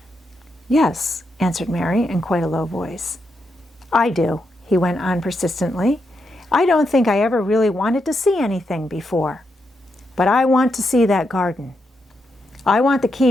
"Yes," answered Mary in quite a low voice. "I do," he went on persistently. "I don't think I ever really wanted to see anything before. But I want to see that garden. I want the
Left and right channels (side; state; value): both; normal; correlation 0.82